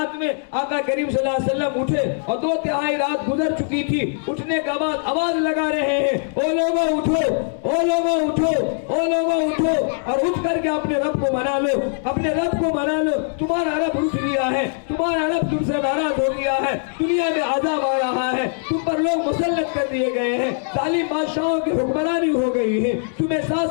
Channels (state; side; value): silent; right; 65 dB below the other